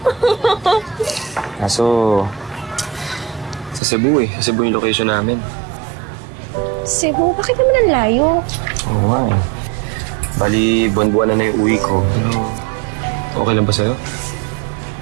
Kaso, sa Cebu eh. Sa Cebu yung location namin. Cebu? Bakit naman ang layo? Oo nga eh. Bali, buwan-buwan na yung uwi ko. Pero, okay lang ba sa'yo?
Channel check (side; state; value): left; drops out; at 3.8 s